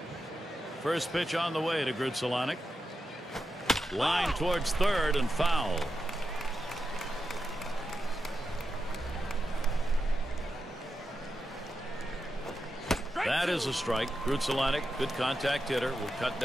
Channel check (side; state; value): both; normal; correlation 0.89